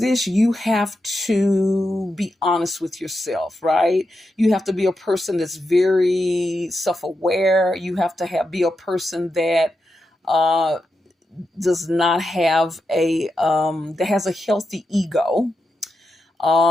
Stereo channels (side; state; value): both; normal; correlation 0.87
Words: you have to be honest with yourself, right? You have to be a person that's very self-aware. You have to be a person that uh, does not have that has a healthy ego,